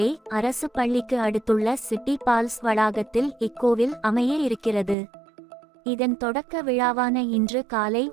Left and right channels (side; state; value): left; drops out; at 5.0 s